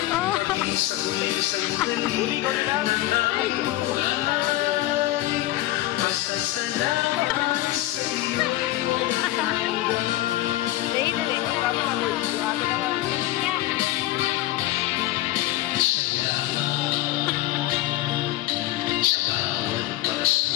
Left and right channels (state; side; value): quieter; right; 16.1 dB